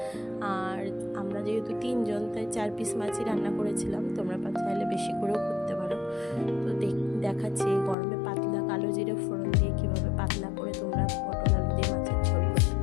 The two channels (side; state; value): right; drops out; at 8.0 s